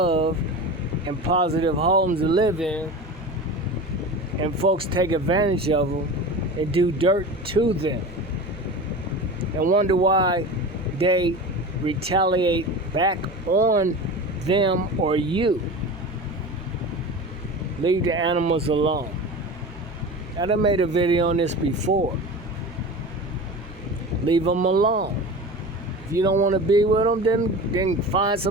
and positive homes to live in. And folks take advantage of them and do dirt to them. And wonder why they retaliate back on them or you. Leave the animals alone. I done made a video on this before. Leave them alone. If you don't want to be with them, then find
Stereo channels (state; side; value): normal; both; correlation 0.32